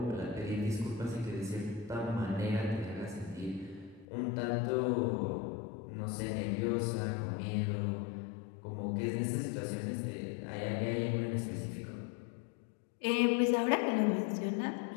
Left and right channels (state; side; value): drops out; right; at 4.0 s